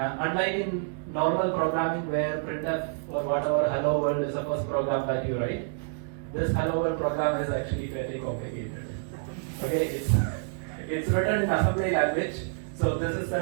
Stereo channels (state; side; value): silent; left; digital silence